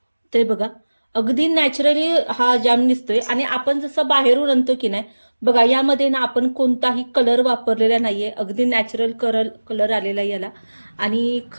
ते बघा अगदी नॅचरली हा जॅम दिसतोय. आणि आपण जसं बाहेरून आणतो की नाही बघा यामध्ये ना आपण कोणताही कलर वापरलेला नाहीये. अगदी नॅचरल कलर आलेला याला. आणि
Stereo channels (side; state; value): both; inverted; correlation -1.00